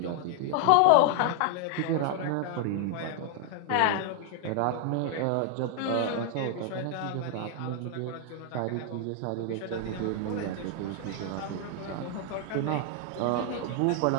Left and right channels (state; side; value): different; both; correlation 0.00